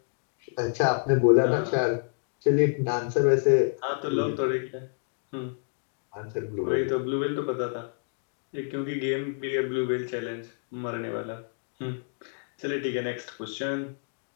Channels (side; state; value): right; silent; digital silence